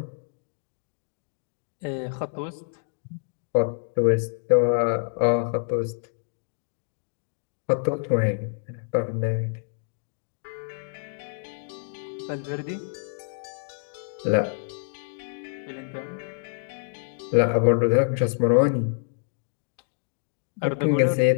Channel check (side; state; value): right; silent; digital silence